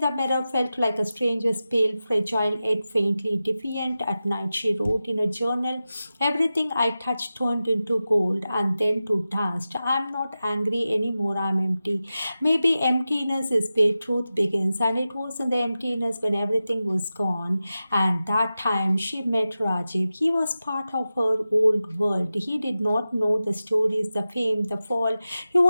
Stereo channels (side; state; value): both; inverted; correlation -0.94